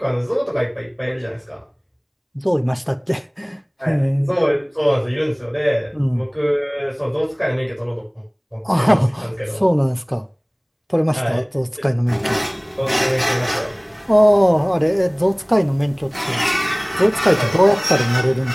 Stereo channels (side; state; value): both; identical; correlation 1.00